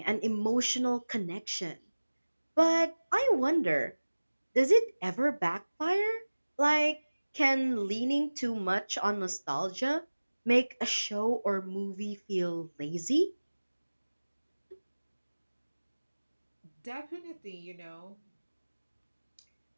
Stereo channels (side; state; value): both; inverted; correlation -1.00